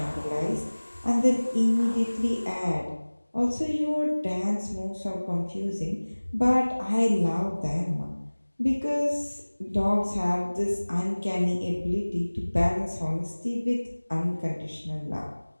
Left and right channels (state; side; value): inverted; both; correlation -1.00